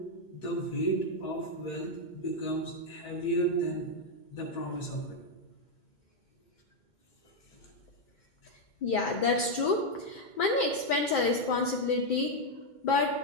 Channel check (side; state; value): right; late; 2.2 ms